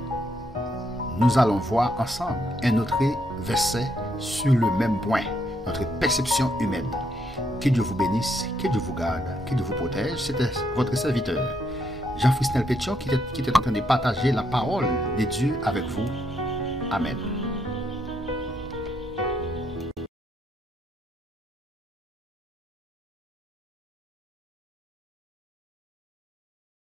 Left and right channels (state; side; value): normal; both; correlation 0.75